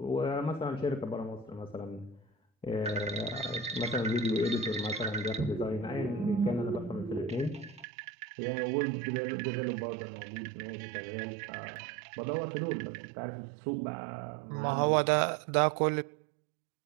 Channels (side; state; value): left; drops out; at 7.9 s